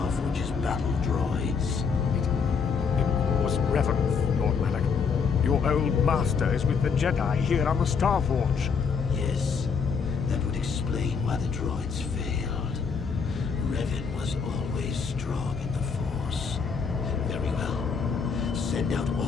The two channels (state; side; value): quieter; right; 5.8 dB